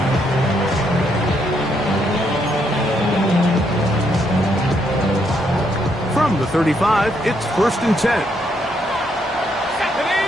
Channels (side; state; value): both; normal; correlation 0.75